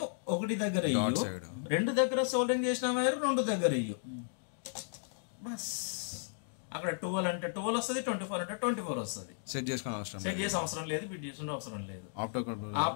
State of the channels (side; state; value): right; silent; digital silence